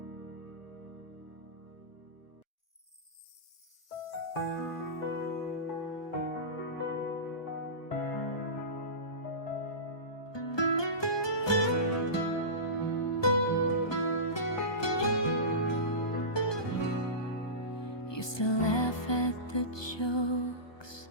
Used to laugh at the jokes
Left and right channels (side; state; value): right; late; 1.2 ms